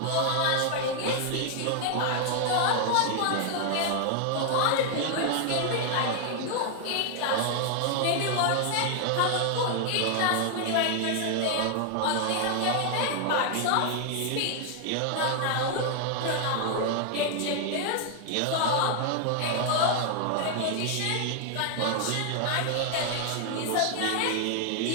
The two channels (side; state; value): both; different; correlation 0.00